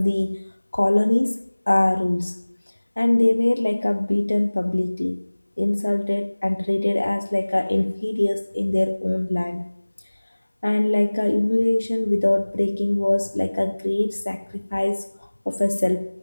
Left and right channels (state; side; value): inverted; both; correlation -1.00